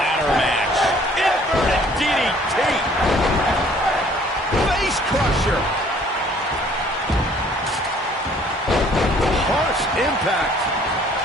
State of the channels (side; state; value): both; normal; correlation 0.58